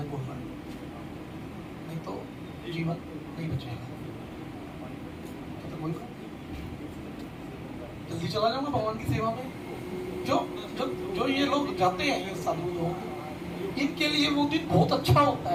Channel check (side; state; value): both; identical; correlation 1.00